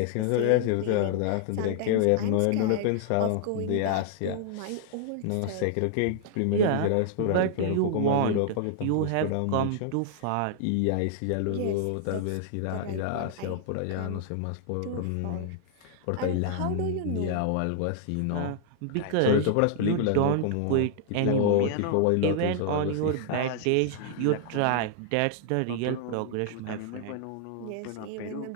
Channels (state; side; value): different; both; correlation -0.01